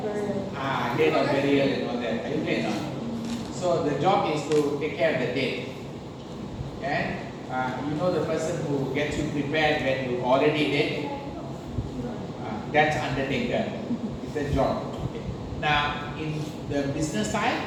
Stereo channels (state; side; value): identical; both; correlation 1.00